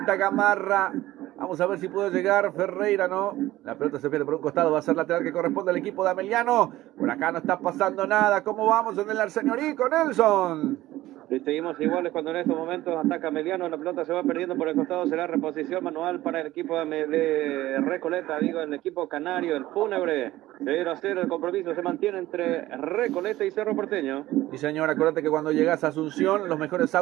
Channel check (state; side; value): quieter; left; 16.1 dB